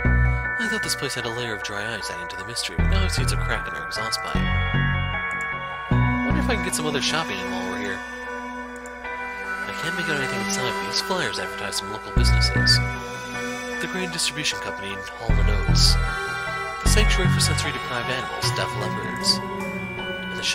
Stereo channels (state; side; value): identical; both; correlation 1.00